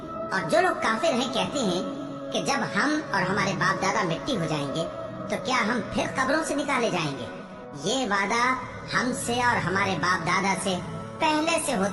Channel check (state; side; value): identical; both; correlation 1.00